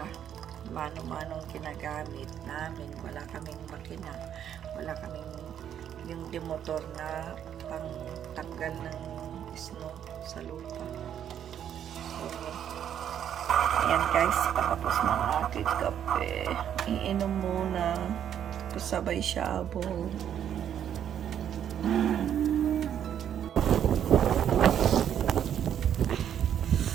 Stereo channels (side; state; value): left; quieter; 9.5 dB